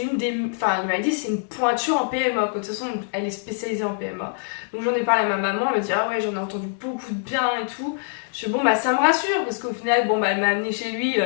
une des... Enfin, il m'a dit c'est une pointure en PMA, quoi. De toute façon, elle est spécialisée en PMA. Donc j'en ai parlé à ma maman, elle m'a dit ah ouais, j'en ai entendu beaucoup de bien et tout. Je suis bon, bah ça me rassure parce qu'au final, bon, bah elle m'a amené chez lui,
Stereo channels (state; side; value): silent; right; digital silence